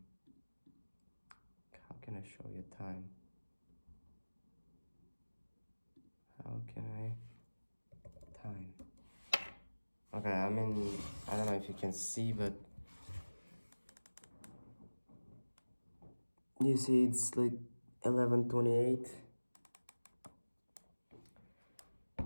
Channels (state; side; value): inverted; both; correlation -1.00